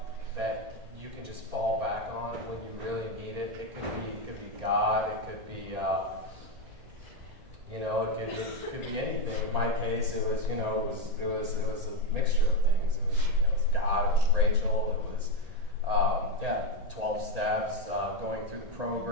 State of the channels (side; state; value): left; late; 1.8 ms